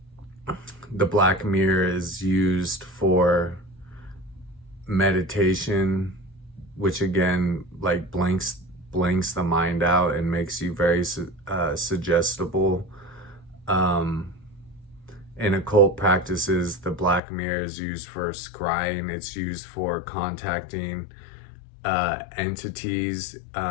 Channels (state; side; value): drops out; right; at 17.2 s